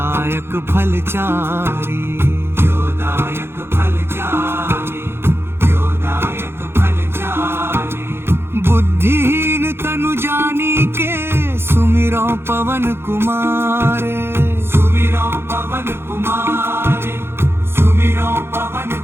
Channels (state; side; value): late; left; 0.12 ms